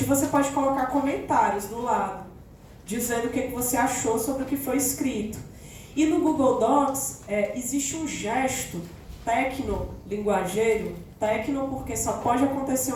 E você pode colocar comentários do lado, dizendo o que você achou sobre o que foi escrito. E no Google Docs existe um gesto tecno-linguageiro, tecno porque só pode acontecer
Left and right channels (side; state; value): both; identical; correlation 1.00